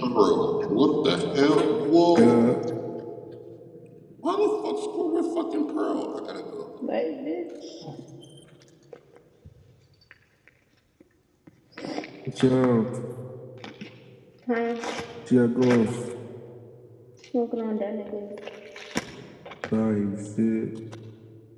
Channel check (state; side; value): identical; both; correlation 1.00